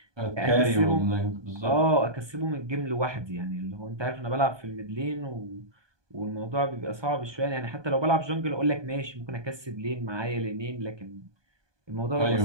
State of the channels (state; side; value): late; left; 1.2 ms